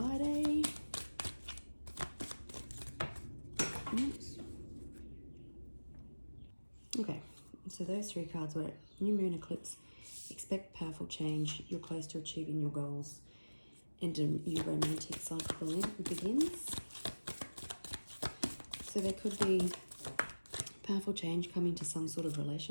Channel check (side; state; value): both; inverted; correlation -1.00